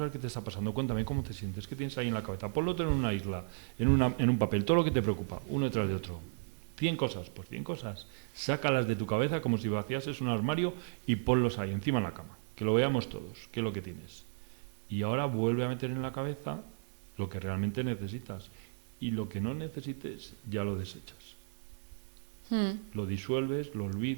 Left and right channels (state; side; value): silent; left; digital silence